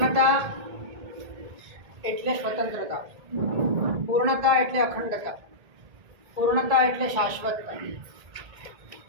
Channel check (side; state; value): left; late; 1.8 ms